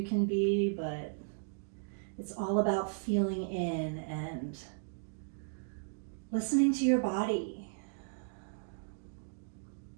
can be, but it's all about feeling in and listening to your body.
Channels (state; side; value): silent; left; digital silence